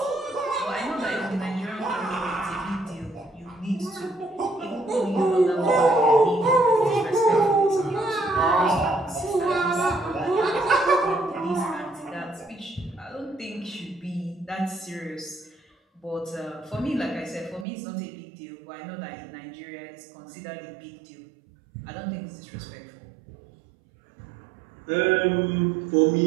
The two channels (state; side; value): drops out; left; at 17.7 s